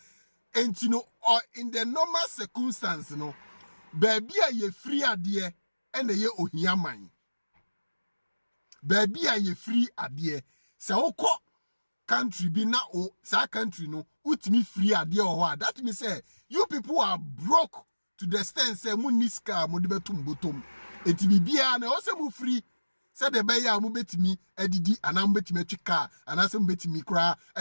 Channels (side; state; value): both; inverted; correlation -1.00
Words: And you know, or in the normal circumstance, you know, baby are ye free idea and the ye ohia mine. Baby are ye free idea. So country be na o sa country no utimi free idea or what. That means say you people are broke to the extent say muniska mo de betum bottom. Eti bibia na o se mo free. Say the be ya mo betimi edidi anam betimi twika anasem betimi kra